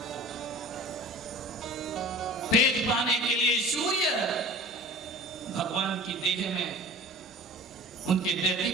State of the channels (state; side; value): normal; both; correlation 0.40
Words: है। तेज पाने के लिए सूर्य भगवान की देह में उनके